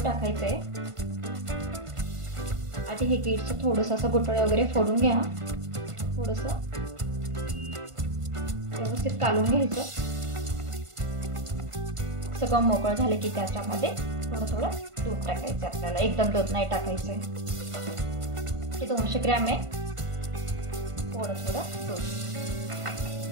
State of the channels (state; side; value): late; left; 1.5 ms